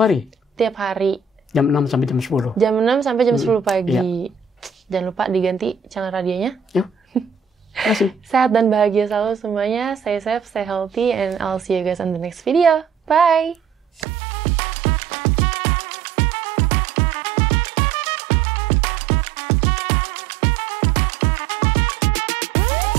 hari. Tiap hari. Jam 6 sampai jam 10. Jam 6 sampai jam 10 pagi. Ya. Jangan lupa diganti channel radionya. Yuk. Terima kasih. Sehat dan bahagia selalu semuanya. Stay safe, stay healthy, and I'll see you guys on the next video. Bye!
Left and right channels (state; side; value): drops out; left; at 14.1 s